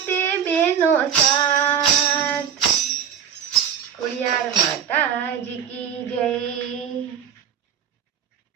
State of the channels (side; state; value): left; quieter; 8.2 dB